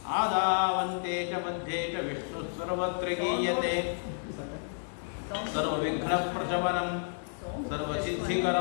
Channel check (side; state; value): right; silent; digital silence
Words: ಆದಾವಂತೆ ಚ ಮಧ್ಯೆ ಚ ವಿಷ್ಣುಃ ಸರ್ವತ್ರ ಗೀಯತೆ. ಸರ್ವವಿಘ್ನಪ್ರಶಮನಂ